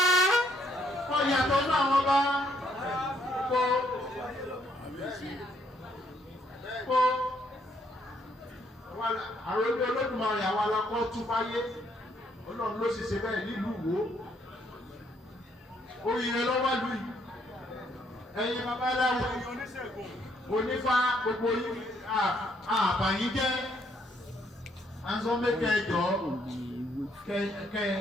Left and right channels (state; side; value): normal; both; correlation 0.70